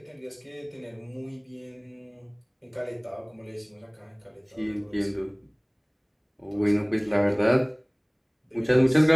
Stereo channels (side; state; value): both; identical; correlation 1.00